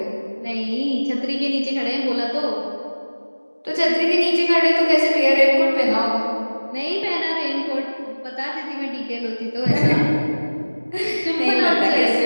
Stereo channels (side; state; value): both; inverted; correlation -1.00